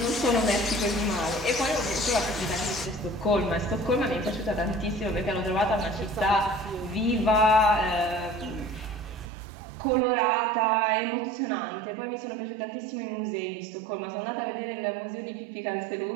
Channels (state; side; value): drops out; left; at 9.2 s